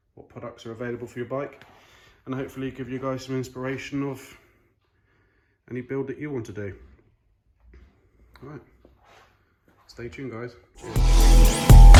what products are available for your bike, and hopefully give you guys some inspiration of any build that you want to do. All right, stay tuned guys.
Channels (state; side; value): identical; both; correlation 1.00